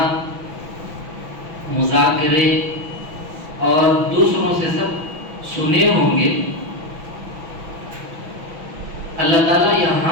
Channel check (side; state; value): left; late; 6.0 ms